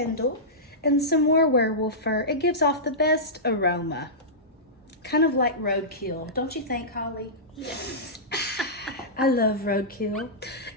and some more werewolf fur. It gives off the best aroma. Kind of like roadkill, don't you think, Holly? Yes. I love roadkill.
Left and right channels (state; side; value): normal; both; correlation -0.16